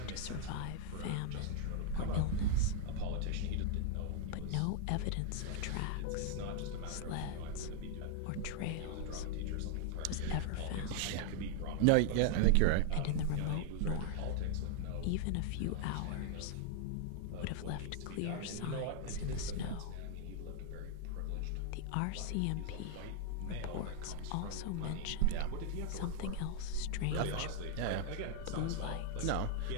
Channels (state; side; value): different; both; correlation 0.00